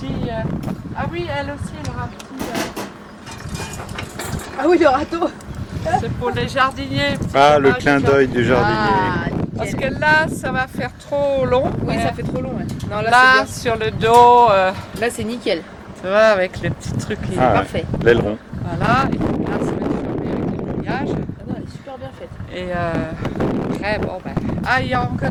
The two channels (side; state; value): both; identical; correlation 1.00